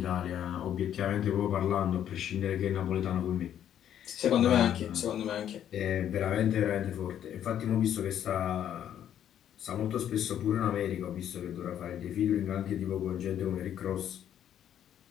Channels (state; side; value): quieter; right; 10.2 dB